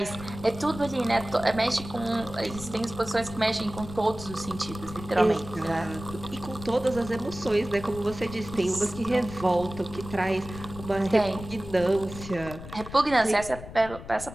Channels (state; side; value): noise; left; rumble, 13 dB below the sound